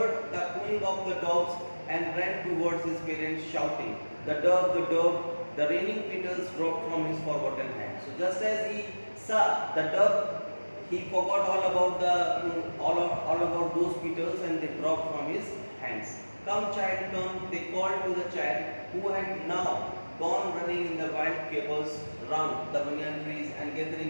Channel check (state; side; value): inverted; both; correlation -1.00